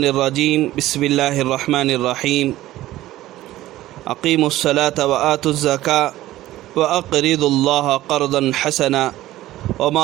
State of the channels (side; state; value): left; quieter; 15.5 dB